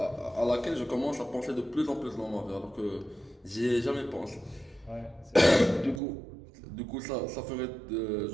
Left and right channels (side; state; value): left; drops out; at 6.0 s